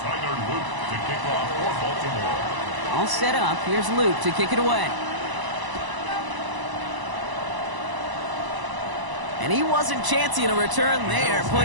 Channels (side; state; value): left; late; 1.0 ms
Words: Luke to kick off for Baltimore. All set up. Here's Luke to kick it away. And he wasn't chancing a return there,